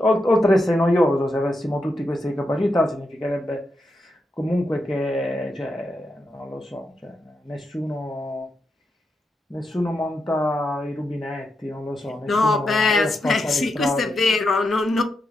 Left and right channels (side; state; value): both; normal; correlation 0.85